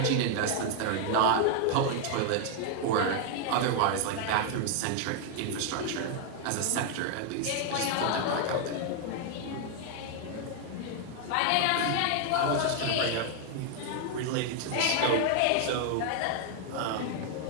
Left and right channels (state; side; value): different; both; correlation 0.00